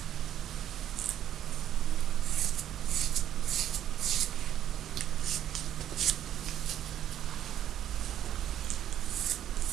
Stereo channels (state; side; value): quieter; left; 10.9 dB